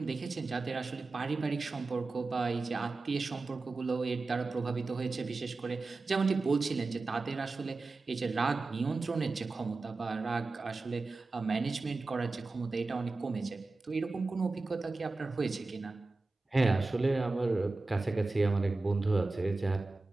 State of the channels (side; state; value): left; quieter; 3.6 dB